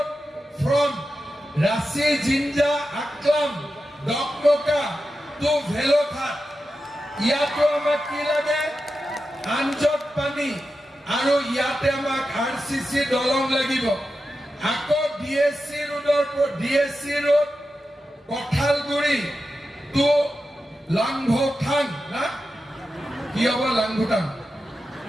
from Rachi Jinja Aklam Dokmoka to Bhelowghat. ইয়াতো আমাক কি লাগে? আঞ্জত পানী আৰু ইয়াতে আমাক RCC দলং লাগিব। আকৌ DSC ৰোডৰ পৰা DSC ৰোড কঠালগুৰি টু লাংভুটাং না কি হ'ব? লাংভুটাং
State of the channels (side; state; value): both; normal; correlation 0.91